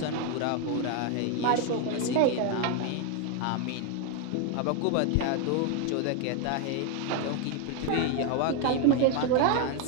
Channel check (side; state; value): both; different; correlation 0.01